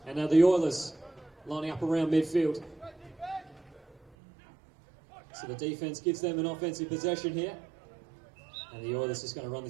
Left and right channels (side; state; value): left; drops out; at 4.2 s